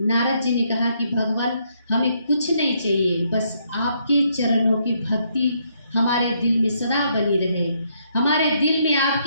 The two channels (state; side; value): inverted; both; correlation -0.73